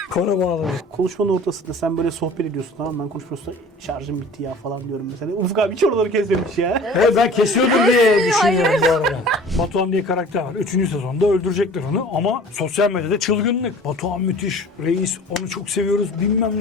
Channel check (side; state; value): both; normal; correlation 0.45